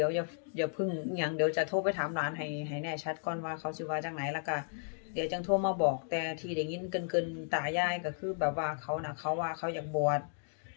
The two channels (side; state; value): right; silent; digital silence